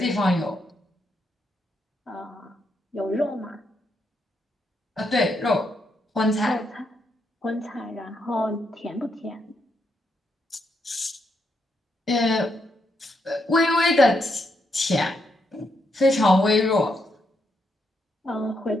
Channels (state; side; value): normal; both; correlation 0.79